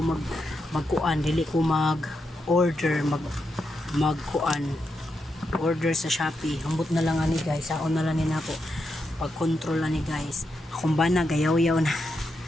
magkuan, dili ko order magkuan order sa Shopee. Hambot na lang ani guys, saon na lang ni nako pag control ani guys. Akong bana gayaw-yaw na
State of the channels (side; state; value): both; normal; correlation 0.84